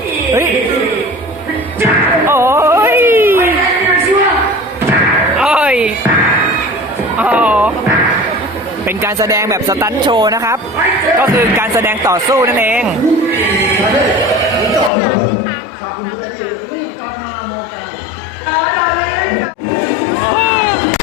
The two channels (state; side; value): drops out; right; at 14.9 s